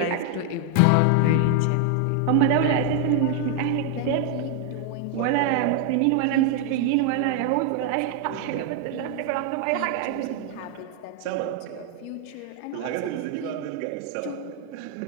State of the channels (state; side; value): different; both; correlation 0.00